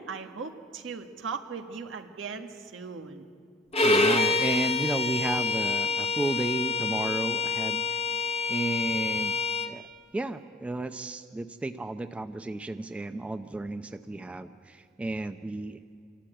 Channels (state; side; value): normal; both; correlation 0.48